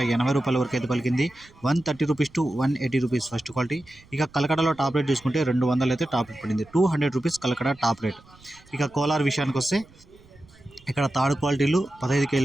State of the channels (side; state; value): right; noise; rumble, 26 dB below the sound